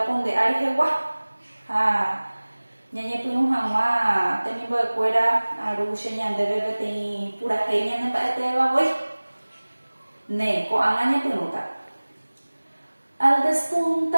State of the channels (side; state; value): both; inverted; correlation -1.00